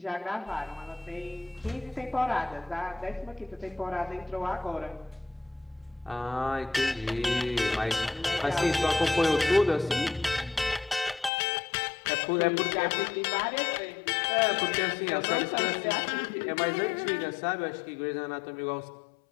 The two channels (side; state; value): right; drops out; at 11.3 s